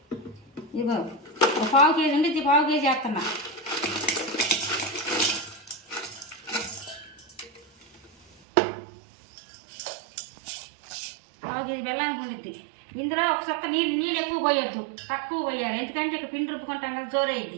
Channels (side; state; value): left; drops out; at 8.4 s